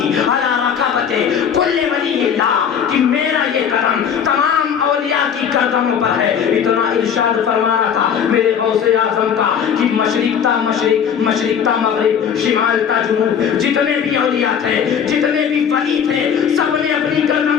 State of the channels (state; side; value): quieter; right; 7.8 dB